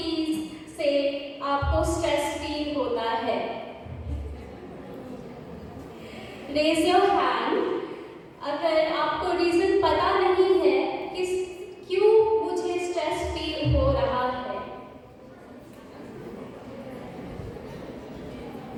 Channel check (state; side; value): identical; both; correlation 1.00